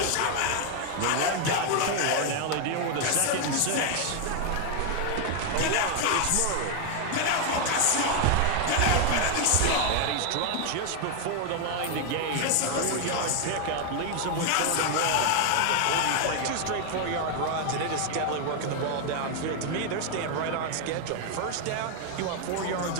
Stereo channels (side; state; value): both; different; correlation 0.00